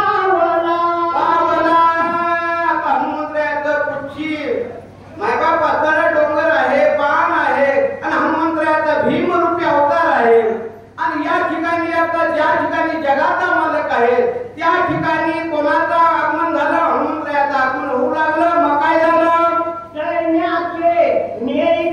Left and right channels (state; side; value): identical; both; correlation 1.00